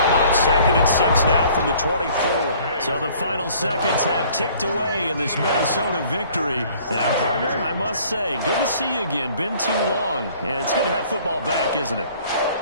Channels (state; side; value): inverted; both; correlation -0.55